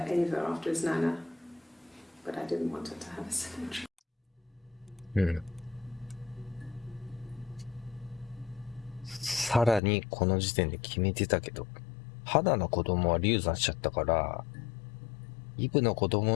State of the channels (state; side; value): drops out; right; at 9.8 s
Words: Ava after his nana, but I didn't want her to have a symmetrical. うん。さらにこの時点で決めてたけど、花の子供は流産しちゃったから、イブの子